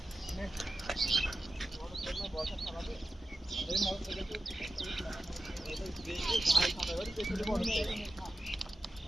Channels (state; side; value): normal; both; correlation 0.93